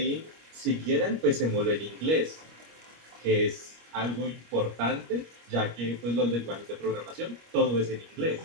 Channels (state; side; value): late; left; 25 ms